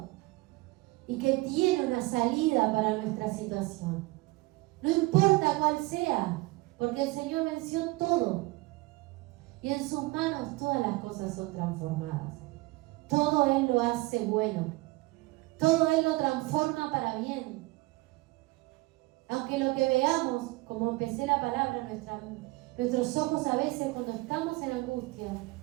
y que tiene una salida para nuestra situación. No importa cuál sea, porque el Señor venció todo y en sus manos todas las cosas son transformadas. Todo Él lo hace bueno, todo Él lo transforma para bien. Aunque lo que veamos, como empecé la palabra, nuestros ojos a veces cuando estamos en angustia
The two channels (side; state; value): left; quieter; 22.4 dB